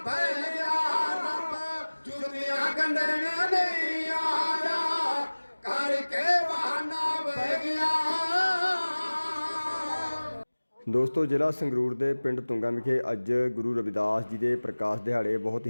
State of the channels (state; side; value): inverted; both; correlation -1.00